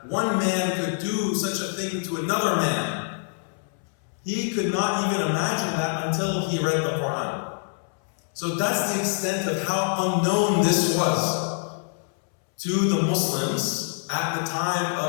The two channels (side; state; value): right; silent; 62 dB below the other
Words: one man could do such a thing to another man. He could not even imagine that until he read the Quran. So that's the extent of how unknown this was to the Muslims at the time